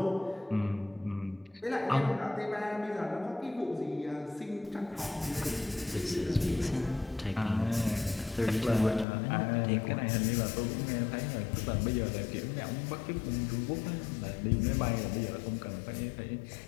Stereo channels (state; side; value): drops out; right; at 9.1 s